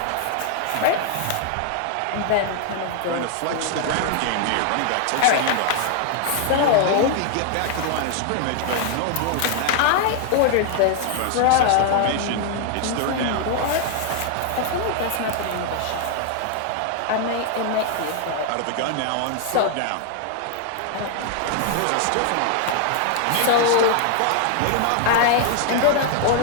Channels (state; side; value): different; both; correlation 0.00